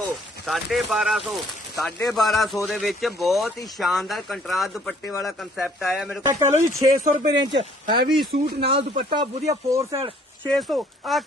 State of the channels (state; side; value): normal; both; correlation 0.59